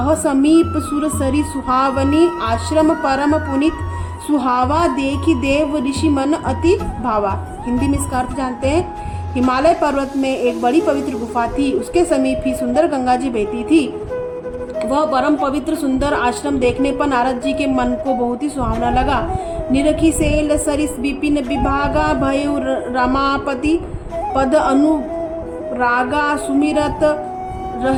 समीप सुरसरी सुहावनी आश्रम परम पुनित सुहावा देखी देव ऋषि मन अति भावा। हिंदी में इसका अर्थ जानते हैं। हिमालय पर्वत में एक बड़ी पवित्र गुफा थी, उसके समीप ही सुंदर गंगा जी बहती थी। वह परम पवित्र सुंदर आश्रम देखने पर नारद जी के मन को बहुत ही सुहावना लगा। निरखी सेल सरिस विपिन विभागा भयु रमापति पद अनुरागा सुमिरत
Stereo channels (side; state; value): both; identical; correlation 1.00